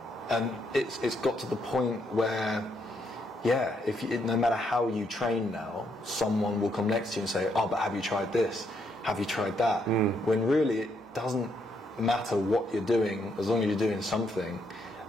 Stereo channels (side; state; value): both; normal; correlation 0.75